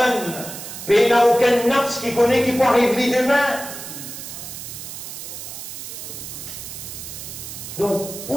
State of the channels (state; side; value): noise; right; hiss, 10 dB below the sound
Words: Il n'y a aucun nafs qui connaît qui peut arriver demain. Donc,